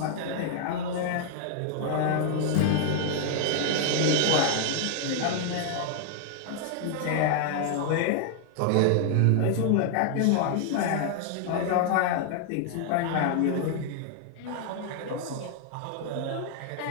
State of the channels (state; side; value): different; both; correlation 0.00